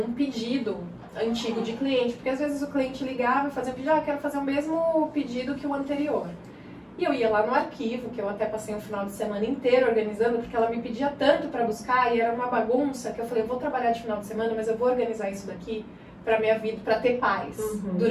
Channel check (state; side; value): identical; both; correlation 1.00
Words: pedido antigo de cliente. Porque às vezes o cliente ligava e fazia um pedido, eu quero fazer o mesmo pedido que o anterior. E eu ia lá no arquivo, que eu até passei um final de semana inteiro organizando, porque ela me pedia tanto pra buscar e era uma bagunça, que eu falei, eu vou trabalhar de final de semana, mas eu vou organizar isso daqui pra minha vida, pra ter paz